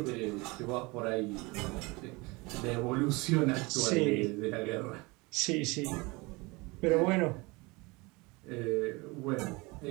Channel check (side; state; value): left; quieter; 25.1 dB